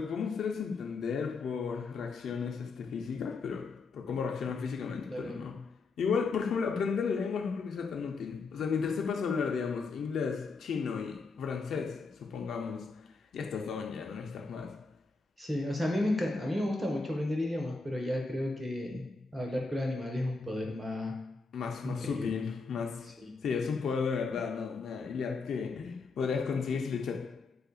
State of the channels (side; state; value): right; quieter; 4.1 dB